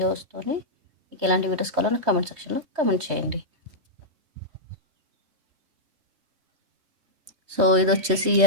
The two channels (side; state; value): left; late; 3.2 ms